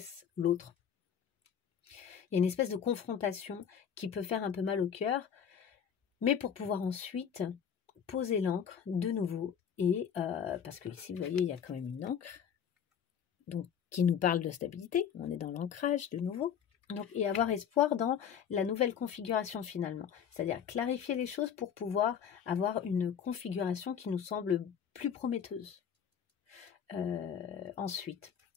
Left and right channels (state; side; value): quieter; right; 8.0 dB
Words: l'autre. Il y a une espèce de confrontation qui peut faire un peu mal au cœur, mais pour pouvoir ensuite poser l'encre de nouveau. Et parce que ici, vous voyez, il y a quand même une encre donc, qui nous parle de stabilité. On est dans l'ancrage de nouveau. Donc, et avoir espoir dans la nouvelle configuration finalement. C'est-à-dire clarifier les choses pour pouvoir avoir une configuration qui nous semble plus prometteuse. Ensuite,